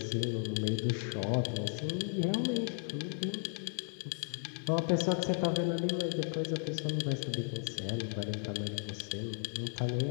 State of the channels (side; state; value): right; silent; 54 dB below the other